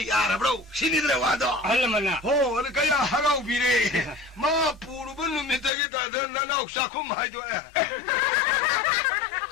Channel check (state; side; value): drops out; right; at 5.7 s